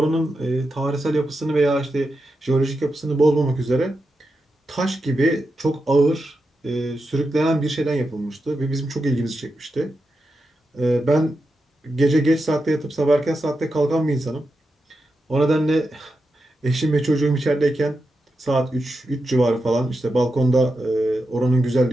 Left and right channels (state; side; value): normal; both; correlation 0.88